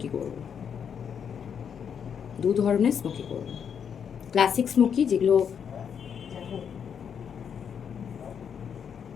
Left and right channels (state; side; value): quieter; right; 7.6 dB